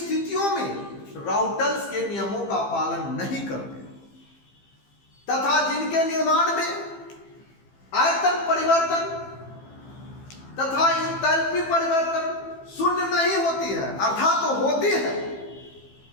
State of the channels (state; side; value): late; right; 15 ms